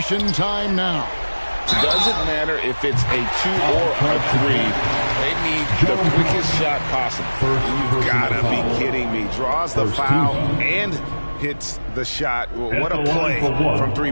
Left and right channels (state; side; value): inverted; both; correlation -1.00